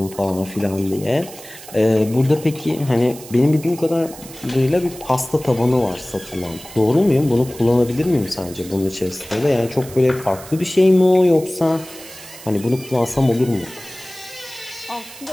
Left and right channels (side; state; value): right; noise; hiss, 17 dB below the sound